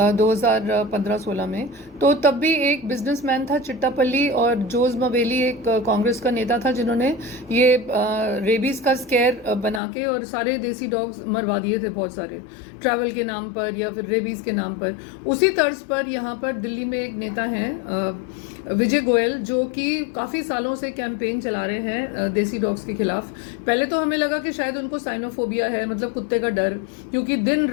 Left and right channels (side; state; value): right; drops out; at 9.8 s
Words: 2015-16 में। तो तब भी एक बिजनेसमैन था चिट्टापल्ली, और जोज मवेली एक कांग्रेस का नेता था, जिन्होंने ये रेबीज का स्केयर बना के और सारे देसी डॉग्स मरवा दिए थे, बहुत सारे, ट्रैवल के नाम पर या फिर रेबीज के नाम पर। उसी तर्ज पर यहाँ पर दिल्ली में एक नेता हैं विजय गोयल, जो कि काफ़ी सालों से कैंपेन चला रहे हैं देसी डॉग्स के खिलाफ। पहले तो हमें लगा कि शायद उनको साइनोफोबिया है, मतलब कुत्ते का डर, क्योंकि दिन